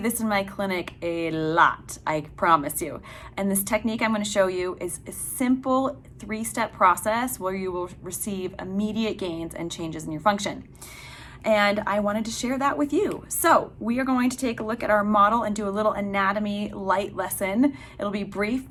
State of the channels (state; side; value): identical; both; correlation 1.00